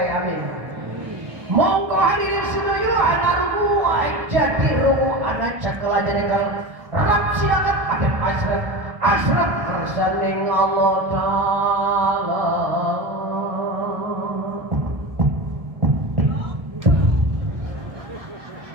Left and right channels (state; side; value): late; left; 1.3 ms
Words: amin. Monggo hadirin sedoyo anak ruwai jadi rumu anak cakala jadi kalau rap silakan ada asraf kersaning Allah Ta'ala.